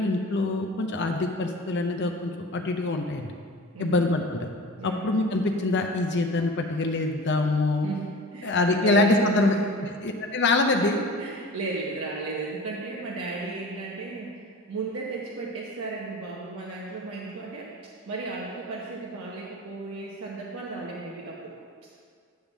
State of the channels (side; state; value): both; normal; correlation 0.38